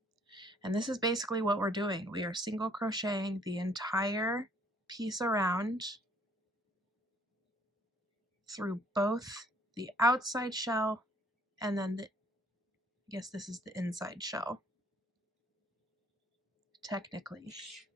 And this is basically what we're doing. We are single crocheting the entire piece around through both the outside shell and then I guess this is the inside shell, technically.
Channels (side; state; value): both; normal; correlation 0.61